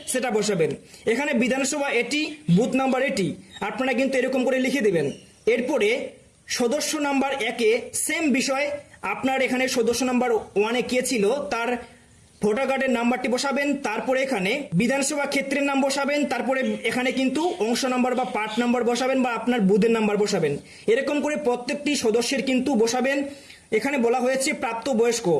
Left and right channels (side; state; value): both; identical; correlation 1.00